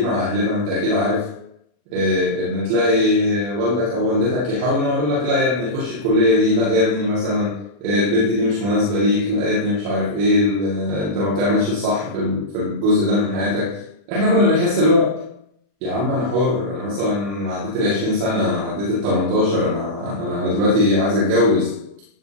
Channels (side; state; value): left; late; 40 ms